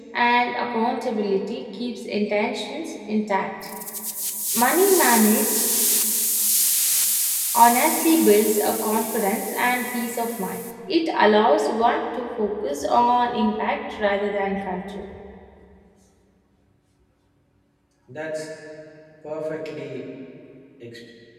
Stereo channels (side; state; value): both; identical; correlation 1.00